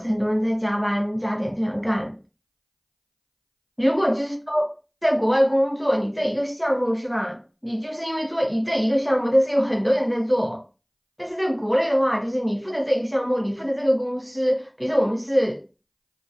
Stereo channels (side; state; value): both; identical; correlation 1.00